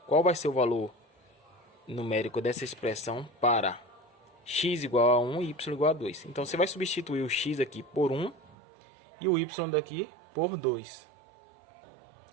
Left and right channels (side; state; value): left; drops out; at 8.6 s